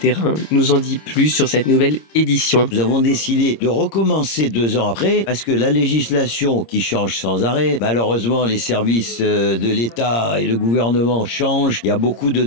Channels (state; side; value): late; right; 26 ms